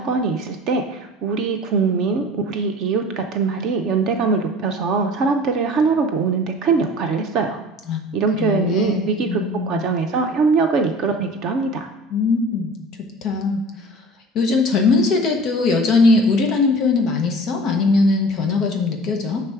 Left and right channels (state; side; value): normal; both; correlation 0.42